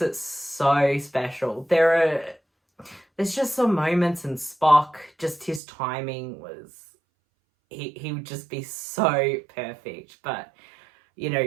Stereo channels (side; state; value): left; drops out; at 5.6 s